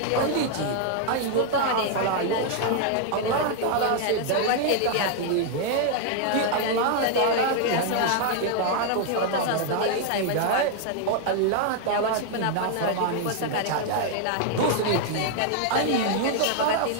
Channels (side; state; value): both; different; correlation 0.00